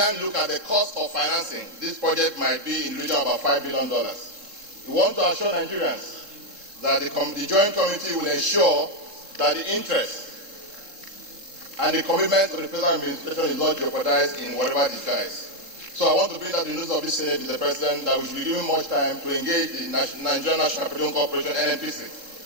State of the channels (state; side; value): late; left; 3.7 ms